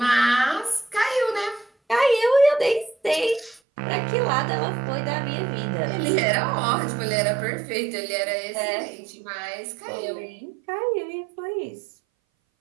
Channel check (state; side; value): drops out; left; at 3.6 s